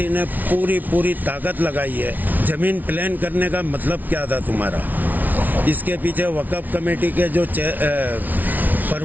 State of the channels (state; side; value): late; left; 0.080 ms